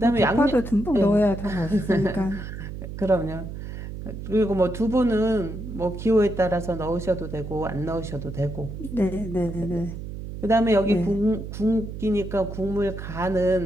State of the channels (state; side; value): noise; right; hum, 9 dB below the sound